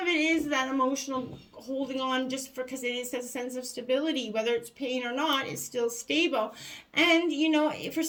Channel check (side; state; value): both; identical; correlation 1.00